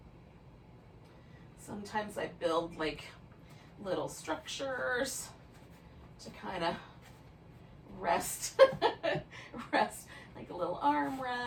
Sometimes I build like little structures to kind of rest, rest, like a little arm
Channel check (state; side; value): identical; both; correlation 1.00